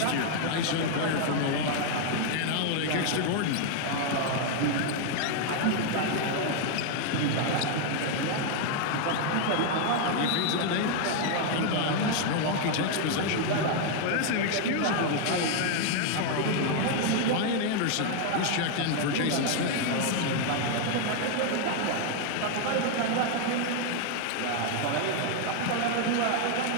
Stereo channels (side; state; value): both; different; correlation 0.00